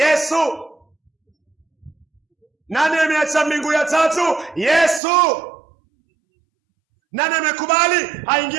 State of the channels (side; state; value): left; drops out; at 5.0 s